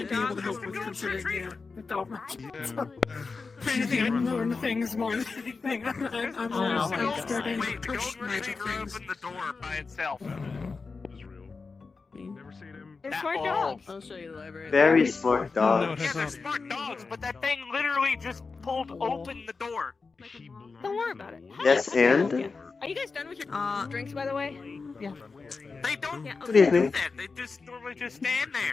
be able to help with considering the dog magic. If anything, I'd learn things more than anything. I'm always starting to Wait, push don't magic really things. open the door by itself. They're smart dogs. I'll show you the library. Very smart dog. Yeah, they're smart dogs, but that thing literally just pulled open the door. Don't worry about it. Yes, and? Are you guys done with your drinks, by the way? Yeah. They don't Yeah, Good evening. do that. They just normally just stand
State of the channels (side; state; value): right; quieter; 4.4 dB